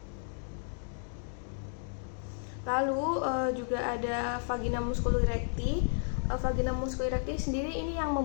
Lalu juga ada vagina musculi recti. Vagina musculi recti sendiri ini yang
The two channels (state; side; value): silent; right; 56 dB below the other